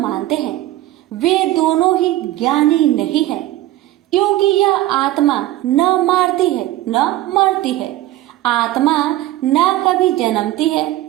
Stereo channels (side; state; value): left; quieter; 15.3 dB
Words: हैं, वे दोनों ही ज्ञानी नहीं है, क्योंकि यह आत्मा न मारती है न मरती है। आत्मा न कभी जन्मती है